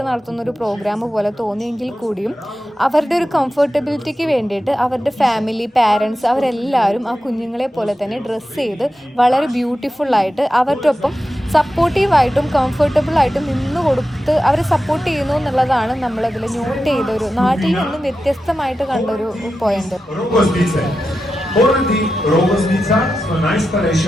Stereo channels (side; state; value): both; normal; correlation 0.91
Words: നടത്തുന്ന ഒരു പ്രോഗ്രാം പോലെ തോന്നിയെങ്കിൽ കൂടിയും അവരുടെ ഒരു കംഫർട്ടബിലിറ്റിക്ക് വേണ്ടിയിട്ട് അവരുടെ ഫാമിലി, പാരൻസ് അവരെല്ലാവരും ആ കുഞ്ഞുങ്ങളെ പോലെ തന്നെ ഡ്രസ്സ് ചെയ്ത് വളരെ ബ്യൂട്ടിഫുള്ളായിട്ട് അവരുടെ ഒപ്പം സപ്പോർട്ടീവായിട്ടും കംഫർട്ടബിളായിട്ടും നിന്ന് കൊടുത്ത് അവരെ സപ്പോർട്ട് ചെയ്യുന്നു എന്നുള്ളതാണ് നമ്മളതിൽ നോട്ട് ചെയ്തൊരു നാട്ടിൽ നിന്നും വ്യത്യസ്തമായിട്ട് കണ്ടൊരു point. Poradi Rogoznica so